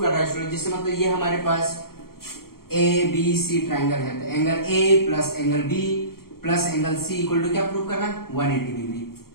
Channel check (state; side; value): late; right; 0.93 ms